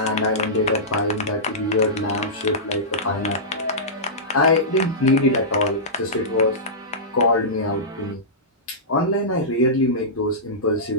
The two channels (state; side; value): normal; both; correlation -0.17